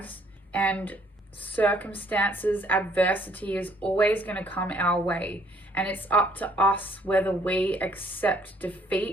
and circumstances, adversity is always going to come our way. And it's up to us whether we accept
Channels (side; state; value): both; normal; correlation 0.63